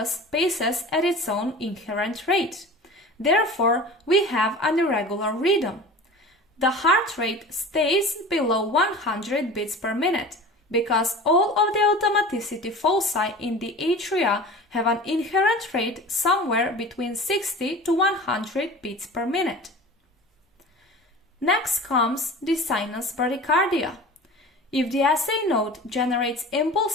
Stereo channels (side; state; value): both; normal; correlation 0.37